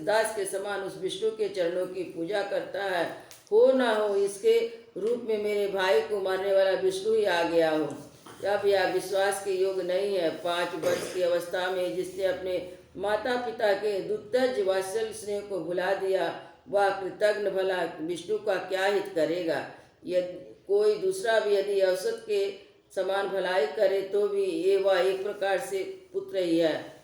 के समान उस विष्णु के चरणों की पूजा करता है। हो ना हो इसके रूप में मेरे भाई को मारने वाला विष्णु ही आ गया हो। अब यह विश्वास के योग नहीं है। 5 वर्ष की अवस्था में जिसने अपने माता पिता के दुत्तज वात्सल्य स्नेह को भुला दिया, वह कृतज्ञ भला विष्णु का क्या हित करेगा? यदि कोई दूसरा भी यदि औसत के समान भलाई करे तो भी ये वह एक प्रकार से पुत्र ही है,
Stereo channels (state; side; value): identical; both; correlation 1.00